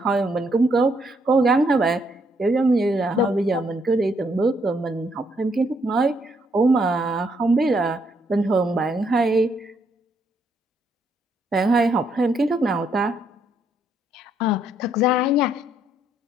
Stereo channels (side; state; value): both; normal; correlation 0.73